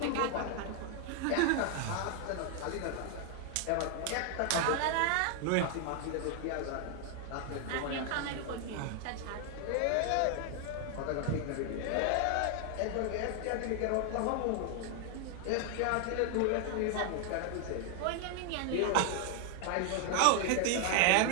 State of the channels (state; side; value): different; both; correlation 0.00